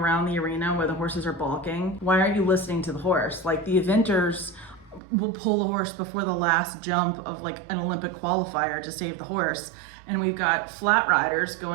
the arena where the horses are balking, why aren't you listening to the horse? Like the eventers will pull the horse before the last jump of like an Olympic qualifier to save the horse. And we've got flat riders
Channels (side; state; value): left; drops out; at 5.0 s